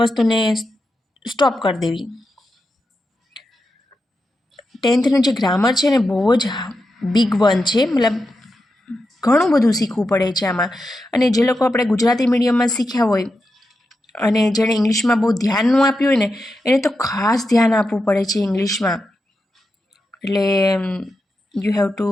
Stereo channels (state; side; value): normal; both; correlation 0.88